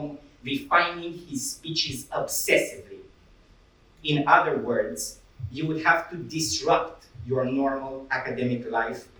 refining his speeches obsessively. In other words, you would have to disrupt your normal academic life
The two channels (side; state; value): both; identical; correlation 1.00